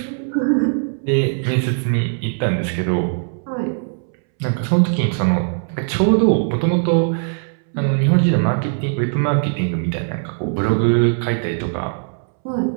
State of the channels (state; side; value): silent; left; 66 dB below the other